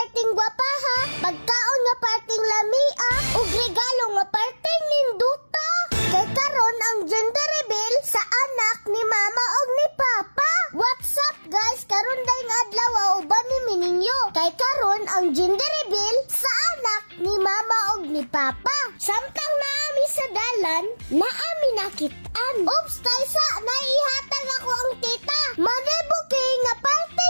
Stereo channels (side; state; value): both; inverted; correlation -1.00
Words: gwapa ha, pagkaon nga parting lamia, ug regalo nga parting ninduta. Kay karon ang gender reveal sa anak ni mama ug ni papa. What's up guys? Karon dayong adlaw uban ni Mininyo. Kay karon ang gender reveal sa anak ni mama ug ni papa. Samtang naami sa dalan, naami nakitaan. Oops, taysa, naihatag ako ang tita. Manebuki nga